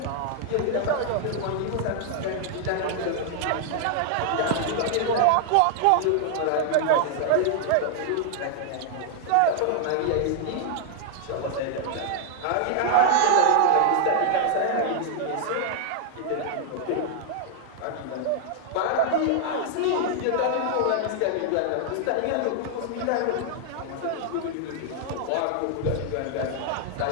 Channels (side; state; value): both; different; correlation -0.01